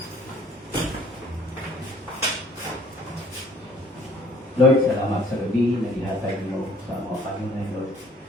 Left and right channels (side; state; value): both; normal; correlation 0.56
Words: Lord, salamat sa gabi na ihatag mo sa mga Panginoon, Lord.